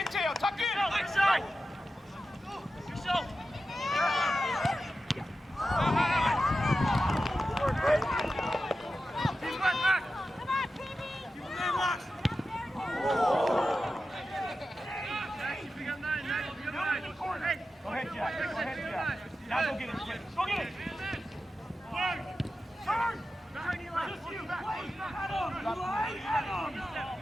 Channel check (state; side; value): normal; both; correlation 0.92